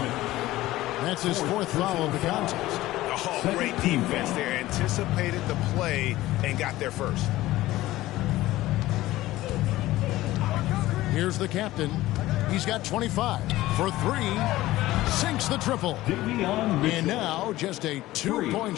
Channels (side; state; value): right; quieter; 16.7 dB